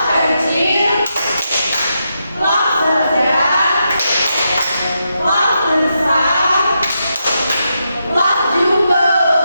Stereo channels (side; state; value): both; inverted; correlation -0.84